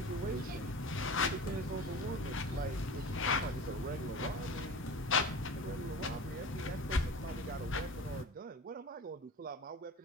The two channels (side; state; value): both; normal; correlation 0.35